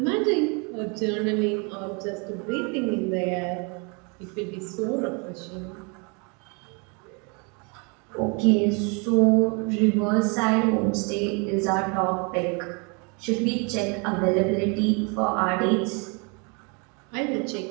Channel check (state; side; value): quieter; left; 33.0 dB